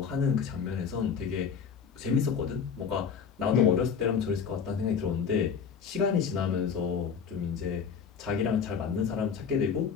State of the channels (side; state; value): right; quieter; 6.6 dB